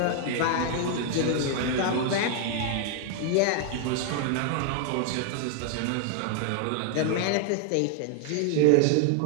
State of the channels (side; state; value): both; different; correlation 0.00